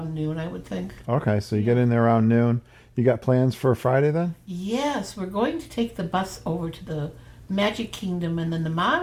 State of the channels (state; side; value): identical; both; correlation 1.00